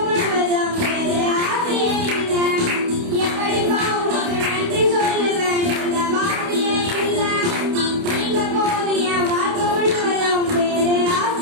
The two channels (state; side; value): late; left; 29 ms